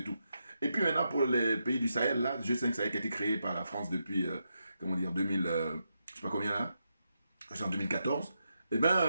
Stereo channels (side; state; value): both; inverted; correlation -0.85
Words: tout. Et puis maintenant pour les pays du Sahel, là, G5 Sahel qui a été créé par la France depuis, 2000, je sais pas combien là, c'est en 2014. Eh